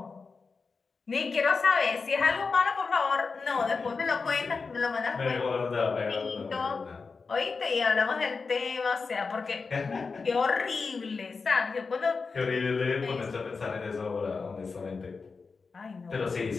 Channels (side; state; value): right; quieter; 4.6 dB